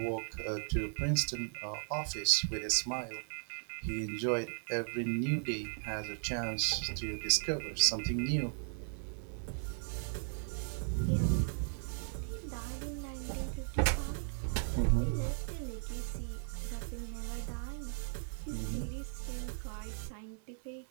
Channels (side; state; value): left; silent; 53 dB below the other